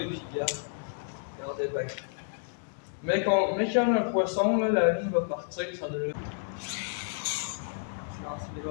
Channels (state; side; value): silent; right; 57 dB below the other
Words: et puis regardez bien. Mais qu'il y en a un poisson, là, la ligne va partir, ça devrait. Je lance les